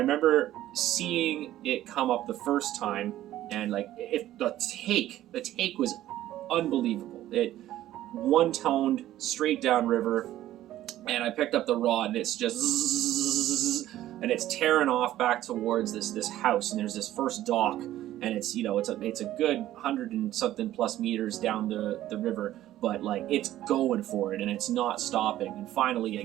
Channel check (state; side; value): quieter; left; 13.7 dB